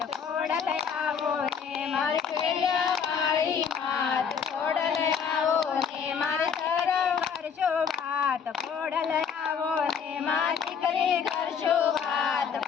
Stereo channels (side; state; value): right; quieter; 6.9 dB